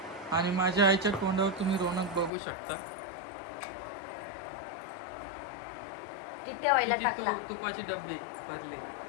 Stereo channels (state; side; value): drops out; right; at 2.3 s